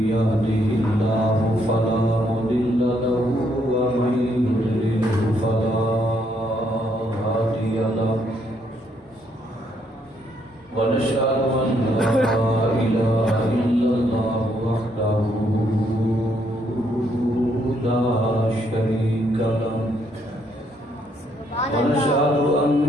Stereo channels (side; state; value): both; normal; correlation 0.72